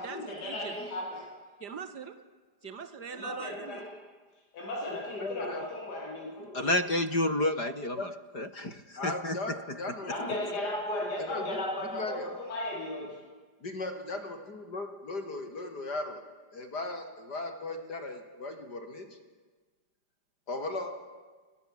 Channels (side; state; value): right; late; 5.0 ms